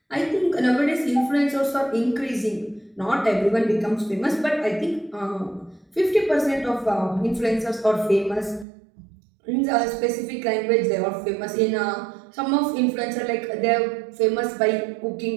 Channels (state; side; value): drops out; left; at 8.7 s